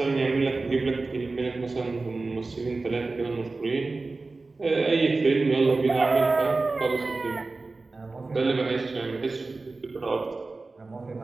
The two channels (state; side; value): quieter; left; 3.6 dB